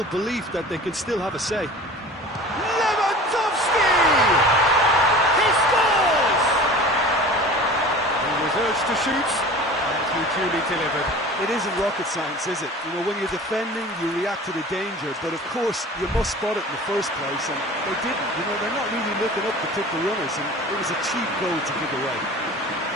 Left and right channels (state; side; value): normal; both; correlation 0.40